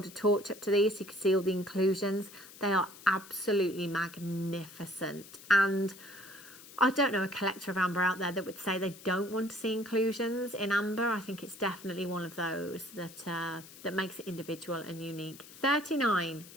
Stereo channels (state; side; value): noise; left; hiss, 18 dB below the sound